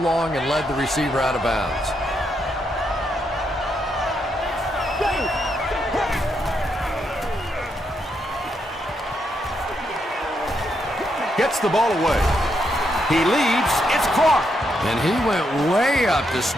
and led the receiver out of bounds. Gets the ball away. He leaps. It's caught. And he went way up to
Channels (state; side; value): normal; both; correlation 0.79